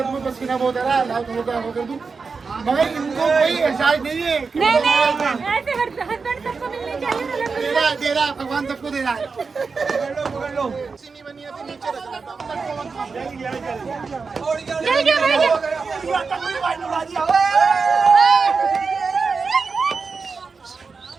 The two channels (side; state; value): left; quieter; 4.8 dB